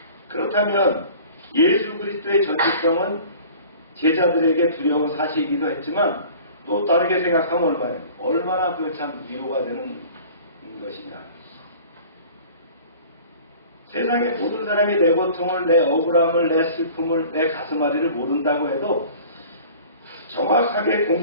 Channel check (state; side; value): inverted; both; correlation -0.45